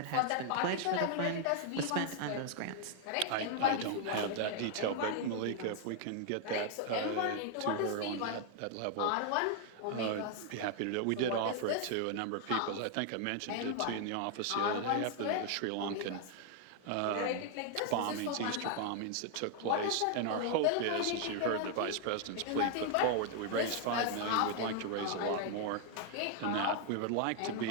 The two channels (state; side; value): different; both; correlation 0.00